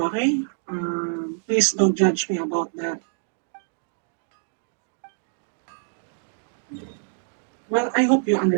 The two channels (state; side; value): silent; left; digital silence